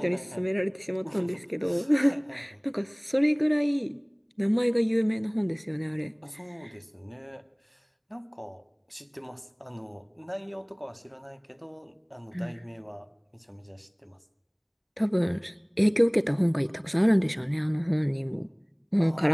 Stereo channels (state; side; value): identical; both; correlation 1.00